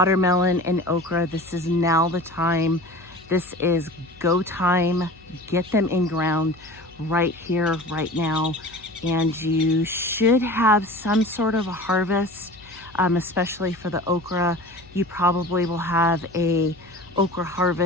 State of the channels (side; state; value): left; noise; hum, 26 dB below the sound